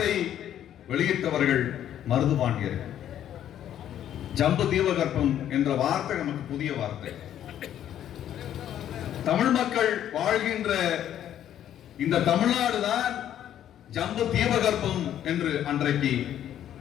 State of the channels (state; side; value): quieter; right; 10.8 dB